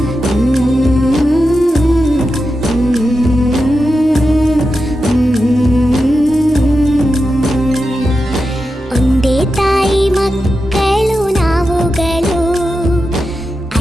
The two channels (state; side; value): normal; both; correlation 0.89